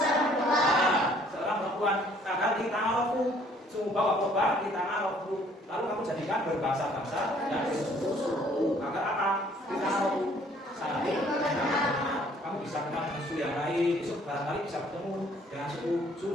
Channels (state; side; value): normal; both; correlation 0.60